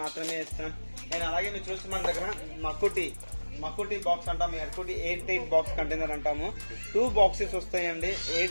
మాత్రమే ఇస్తాం. అండ్ అలాగే మీరు చూస్తే మన దగ్గర మకుటి బాక్స్ అంటాము. ఎర్కుటి 8 బాక్స్ కంటైనర్ అంటాము. 2 బాక్సెస్ వస్తాయండి.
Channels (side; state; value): both; inverted; correlation -1.00